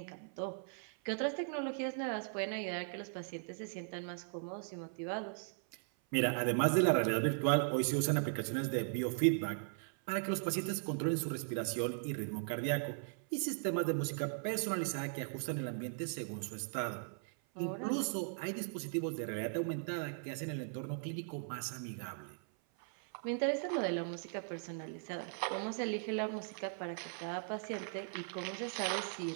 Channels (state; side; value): silent; left; 52 dB below the other